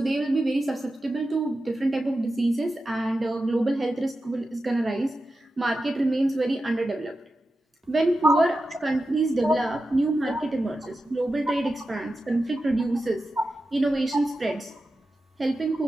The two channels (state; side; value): normal; both; correlation 0.91